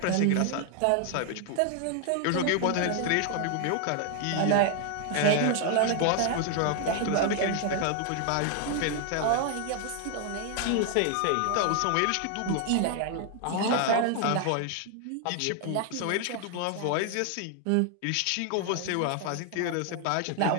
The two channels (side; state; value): both; different; correlation 0.00